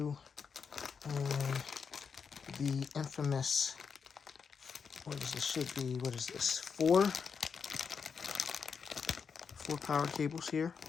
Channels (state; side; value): quieter; right; 6.1 dB